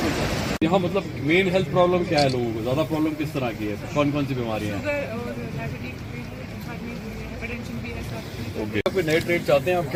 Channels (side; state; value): both; identical; correlation 1.00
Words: यहाँ मतलब मेन हेल्थ प्रॉब्लम क्या है लोगों को? ज्यादा प्रॉब्लम किस तरह की है? कौन कौन सी बीमारियाँ हैं? ओके, आप नए ट्रेड चाहते हैं? आप